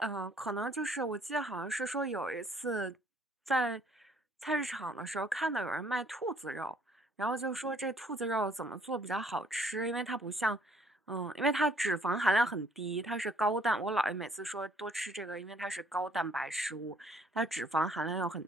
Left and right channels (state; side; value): normal; both; correlation 0.62